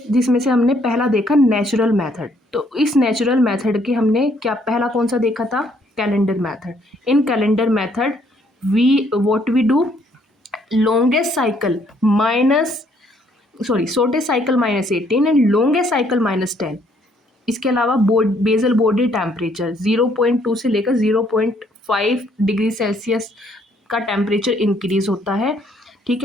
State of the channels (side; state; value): both; normal; correlation 0.67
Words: जिसमें से हमने पहला देखा नेचुरल मेथड। तो इस नेचुरल मेथड के हमने क्या पहला कौन सा देखा था, calendar method. In calendar method what we do, longest cycle shortest cycle -18 and longest cycle -10। इसके अलावा बेजल बॉडी टेम्परेचर 0.2 से लेकर 0.5 डिग्री सेल्सियस का टेम्परेचर इंक्रीज होता है, ठीक